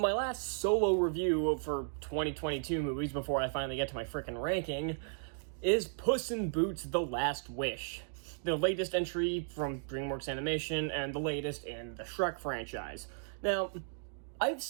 last solo review for 2022 movies before I finally get to my frickin' ranking is Puss in Boots: The Last Wish, the latest entry from Dreamworks Animation and the latest in the Shrek franchise. Now, I've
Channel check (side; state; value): left; silent; digital silence